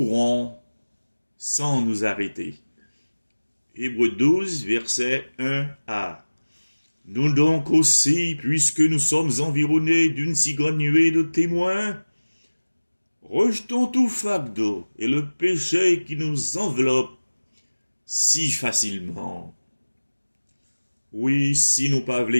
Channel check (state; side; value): inverted; both; correlation -1.00